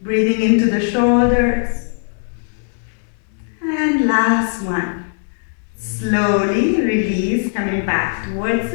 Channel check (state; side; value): silent; right; digital silence